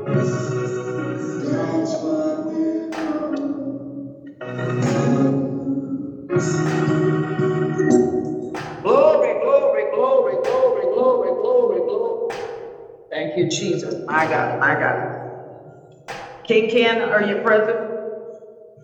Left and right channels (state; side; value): identical; both; correlation 1.00